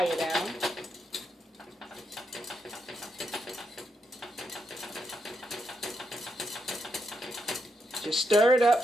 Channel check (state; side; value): normal; both; correlation 0.81